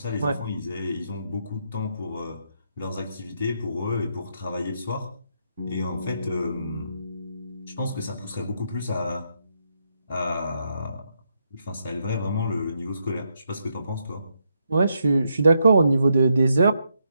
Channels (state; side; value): inverted; both; correlation -0.79